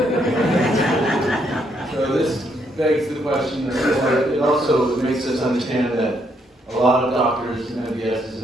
So this begs the question, it also makes us understand that a lot of doctors, MDSs,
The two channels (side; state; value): both; normal; correlation 0.73